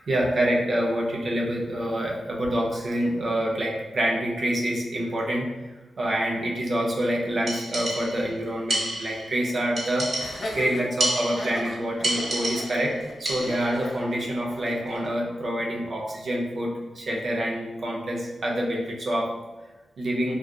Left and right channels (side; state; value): both; normal; correlation 0.89